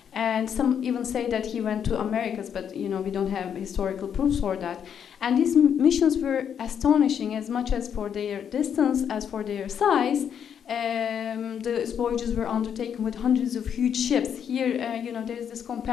And some even say that he went to Americas, but we don't have historical proofs for that. And these missions were astonishing, as much as for their distance as for their size. The voyages were undertaken with hundreds of huge ships. Here, there's this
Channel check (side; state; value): right; quieter; 8.2 dB